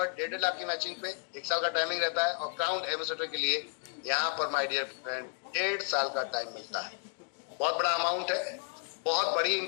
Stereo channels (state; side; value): silent; right; 55 dB below the other